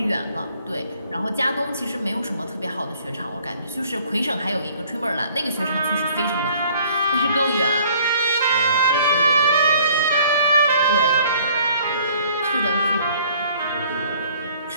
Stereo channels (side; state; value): both; inverted; correlation -0.57